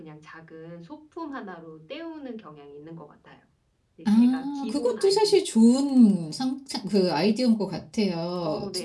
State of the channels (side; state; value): both; identical; correlation 1.00